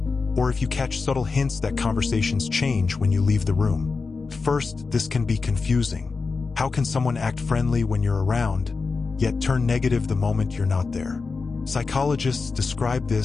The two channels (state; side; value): quieter; right; 4.4 dB